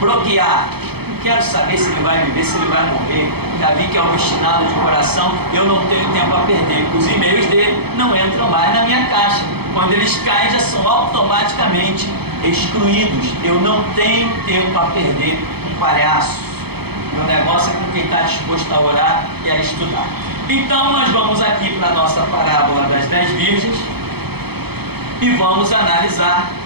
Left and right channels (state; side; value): late; left; 0.97 ms